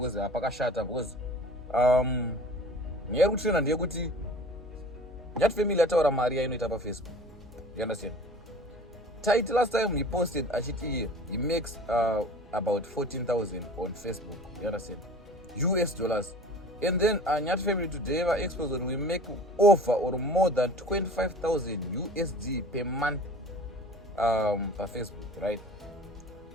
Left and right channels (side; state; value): both; normal; correlation 0.43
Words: apakashata because nyaya yekutrena ndeyekuti Nyathi Family yataura mari yainoita paFacebook. You understand? Tytie last time he posted achiti he makes about 14,000 on Facebook. You understand? US dollars. And then Nyathi Family today have exposed that we make offer or more than 25,000 USD per month for Facebook, right?